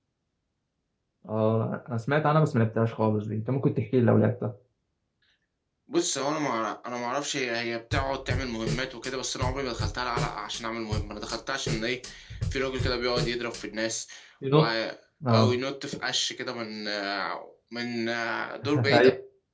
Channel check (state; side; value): identical; both; correlation 1.00